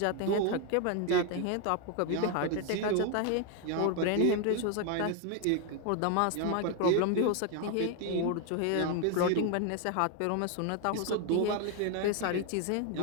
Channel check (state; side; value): different; both; correlation 0.01